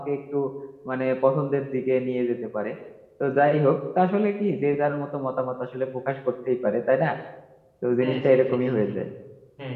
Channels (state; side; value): identical; both; correlation 1.00